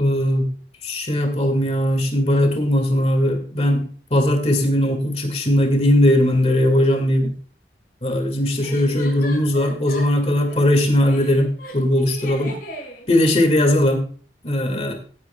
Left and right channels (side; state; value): both; normal; correlation 0.76